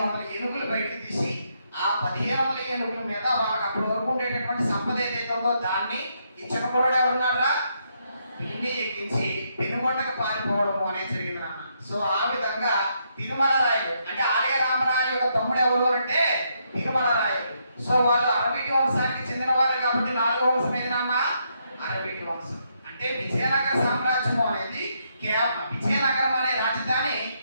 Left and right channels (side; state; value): both; inverted; correlation -0.77